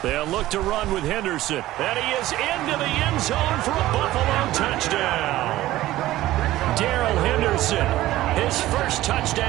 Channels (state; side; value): quieter; left; 15.7 dB